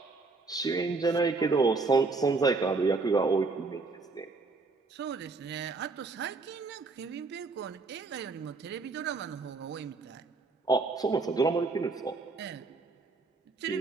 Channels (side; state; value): left; quieter; 3.9 dB